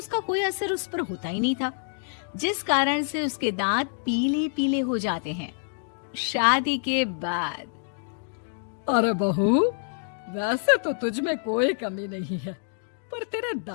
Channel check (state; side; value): silent; right; digital silence